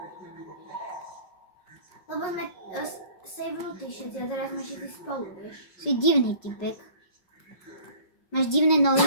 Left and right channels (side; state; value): right; late; 5.1 ms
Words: Lebo sme savenutí všetci a teraz sme všetci spolu, vieš. Si divný typek. Máš divné